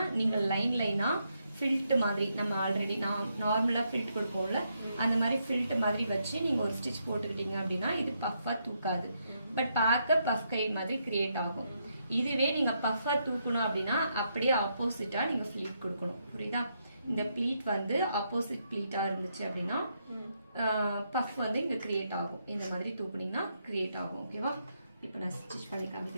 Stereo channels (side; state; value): both; inverted; correlation -0.78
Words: நீங்க லைனா ஃபில்ட் மாதிரி நம்ம ஆல்ரெடி நார்மலா ஃபில்ட் கொடுப்போம்ல அந்த மாதிரி ஃபில்ட் மாதிரி வச்சு நீங்க ஒரு ஸ்டிச் போட்டுக்கிட்டீங்க அப்படின்னா இது பஃபா தூக்காது, பட் பார்க்க பஃப் கை மாதிரி கிரியேட் ஆகும். இதுவே நீங்க பஃபா தூக்கணும் அப்படின்னா அப்படியே ஆப்போசிட்டா நீங்க ஃபிளீட் கொடுக்கணும். புரியுதா? இந்த ப்ளீட் வந்து ஆப்போசிட் ப்ளீட்டா இருந்துச்சு அப்படின்னா பஃப் வந்து இங்க கிரியேட் ஆகும். இந்த மாதிரி தூக்குனீங்கன்னா கிரியேட் ஆகும். ஓகேவா? இப்போ நான் ஸ்டிச் பண்ணி